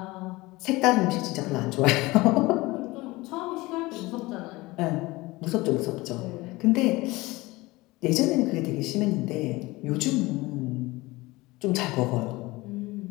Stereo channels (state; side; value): quieter; right; 21.1 dB